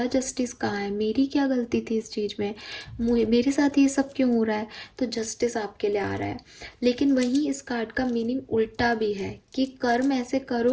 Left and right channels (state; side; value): identical; both; correlation 1.00